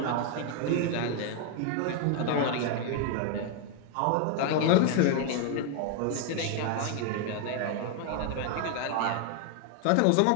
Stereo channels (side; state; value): both; different; correlation 0.01